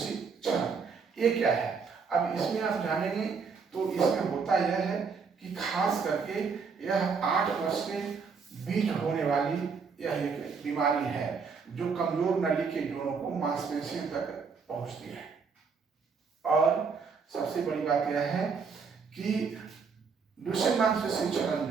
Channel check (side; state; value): left; quieter; 5.4 dB